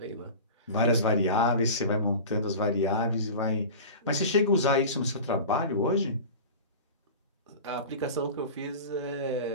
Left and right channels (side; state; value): both; inverted; correlation -0.33